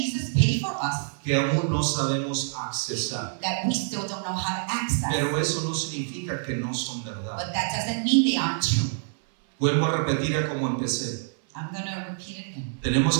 paid for us que aún no sabemos accesar. that we still don't know how to access. Pero eso no significa que no son verdad. But that doesn't mean they aren't true. Vuelvo a repetir a como empecé. I'm going to repeat it again.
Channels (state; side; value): silent; left; 60 dB below the other